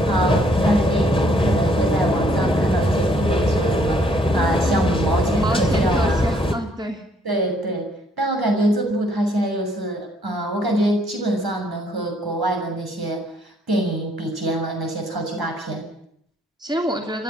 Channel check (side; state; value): both; normal; correlation 0.66